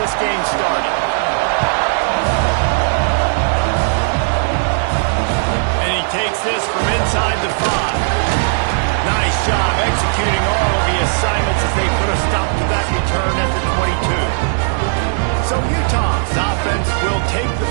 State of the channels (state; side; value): silent; left; digital silence